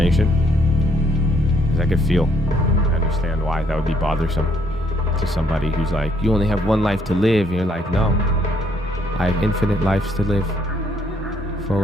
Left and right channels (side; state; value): both; normal; correlation 0.69